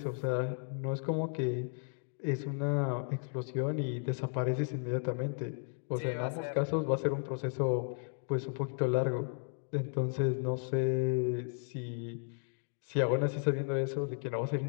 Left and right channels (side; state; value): right; silent; 55 dB below the other